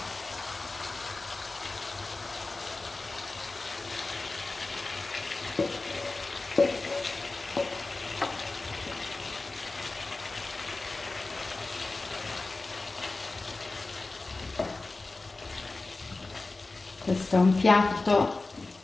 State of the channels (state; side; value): quieter; right; 3.4 dB